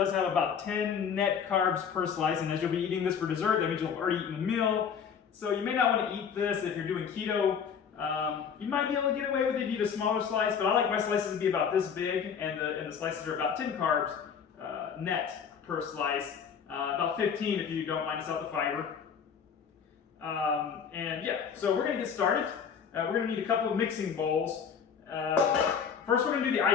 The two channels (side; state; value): right; quieter; 7.0 dB